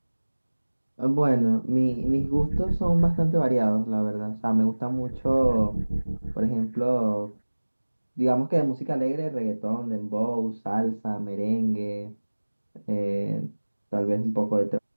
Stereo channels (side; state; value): both; inverted; correlation -1.00